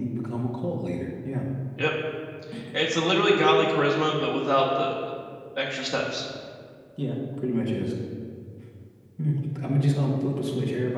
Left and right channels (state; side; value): identical; both; correlation 1.00